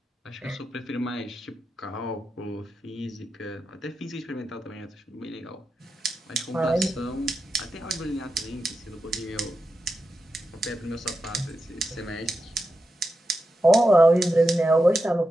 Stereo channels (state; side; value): normal; both; correlation 0.89